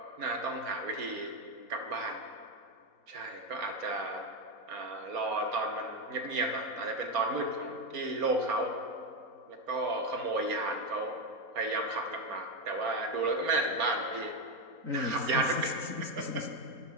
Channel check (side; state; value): left; late; 4.3 ms